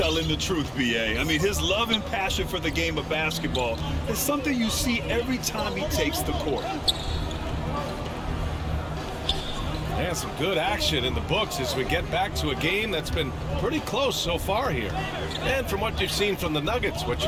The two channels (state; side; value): identical; both; correlation 1.00